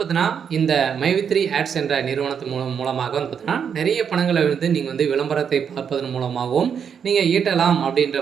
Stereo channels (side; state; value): left; quieter; 7.3 dB